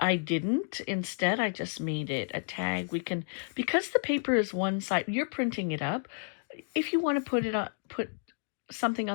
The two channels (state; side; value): silent; right; digital silence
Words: didn't. Instead, I just made it a tag. We can, because the paper is one side, you're printing it up. If you want to put it on, put something